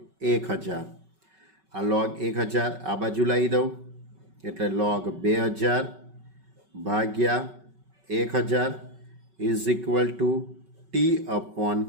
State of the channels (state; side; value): late; left; 5.3 ms